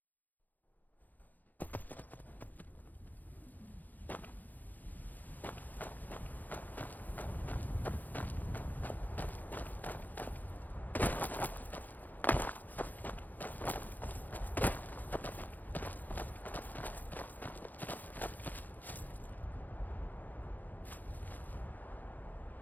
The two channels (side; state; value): right; late; 0.084 ms